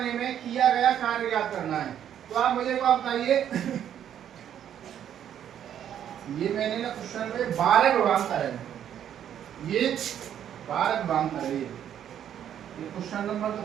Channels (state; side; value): quieter; left; 9.9 dB